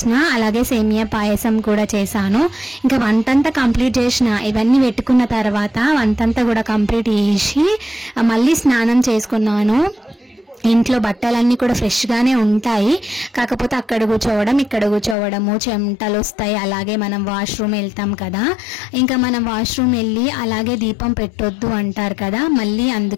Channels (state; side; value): drops out; right; at 15.2 s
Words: అలాగే సేమియా పాయసం కూడా చేశాను. ఇంకా వంటంతా కంప్లీట్ చేసిన, ఇవన్నీ పెట్టుకున్న తర్వాత వంటంతా కూడా కంప్లీట్ చేసి మళ్ళీ స్నానం చేసుకున్నాను. ఇంట్లో బట్టలన్నీ కూడా ఫ్రెష్గానే ఉంటాయి. కాకపోతే అక్కడ కూర్చోవడం ఇక్కడ కూర్చోవడము చెమటలు వస్తాయి. అలాగే మనం వాష్రూమ్ వెళ్తాం కదా, ఇంకా మనం వాష్రూమ్ వెళ్ళి అలాగే దీపం పెట్టొద్దు అంటారు కదా. మళ్ళీ